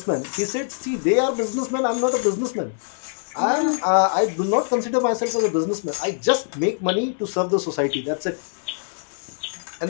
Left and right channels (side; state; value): right; silent; 63 dB below the other